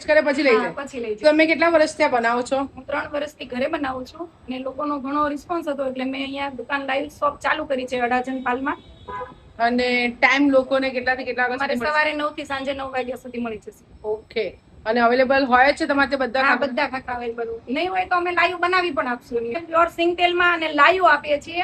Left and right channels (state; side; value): identical; both; correlation 1.00